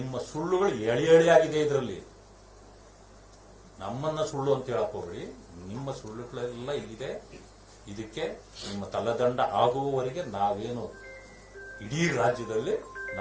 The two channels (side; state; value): both; identical; correlation 1.00